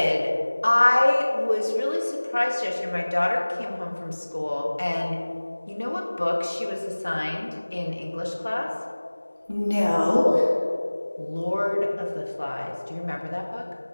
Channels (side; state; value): both; inverted; correlation -1.00